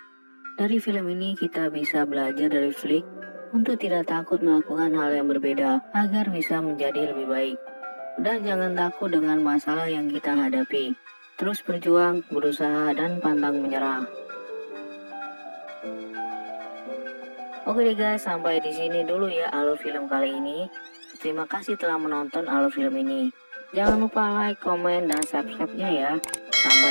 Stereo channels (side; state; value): both; inverted; correlation -1.00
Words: Dari film ini kita bisa belajar dari Flick untuk tidak takut melakukan hal yang berbeda agar bisa menjadi lebih baik. Dan jangan takut dengan masalah yang kita hadapi. Terus berjuang, berusaha, dan pantang menyerah. Oke deh guys, sampai di sini dulu ya alur film kali ini. Terima kasih telah menonton alur film ini. Jangan lupa like, komen, dan subscribe-nya ya.